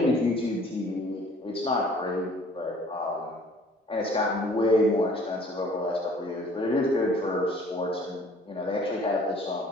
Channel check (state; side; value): normal; both; correlation 0.54